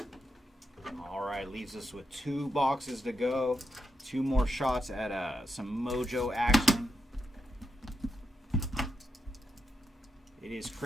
All right, leaves us with 2 boxes to go. 2 more shots at some Mojo action. It is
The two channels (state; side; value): normal; both; correlation 0.84